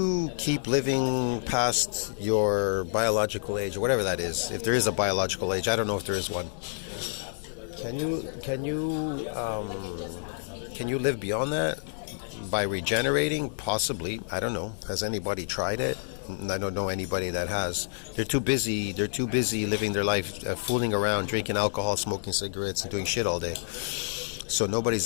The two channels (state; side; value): silent; right; digital silence